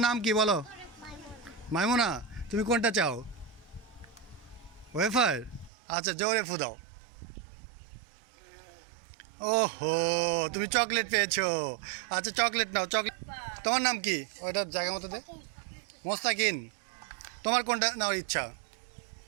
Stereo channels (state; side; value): drops out; left; at 5.7 s